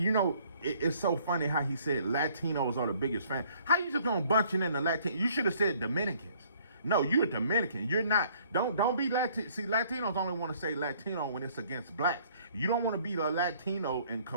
know, it's so funny how he said Latinos are the biggest fan. How you just gonna bunch it in the Latino? You should have said Dominicans. No, you're a Dominican. You're not. Don't be Latino. See, Latinos only want to say Latino when it's against blacks. You don't want to be a Latino and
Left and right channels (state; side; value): inverted; both; correlation -0.60